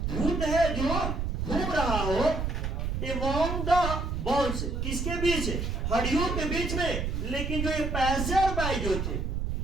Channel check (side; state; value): right; noise; rumble, 1 dB below the sound